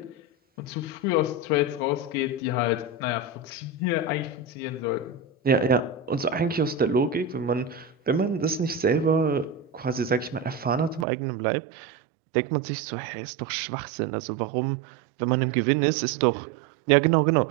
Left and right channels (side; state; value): left; drops out; at 11.1 s